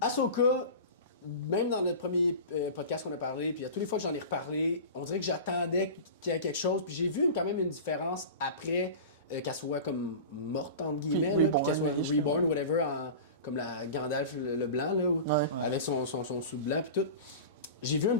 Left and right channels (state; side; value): inverted; both; correlation -0.33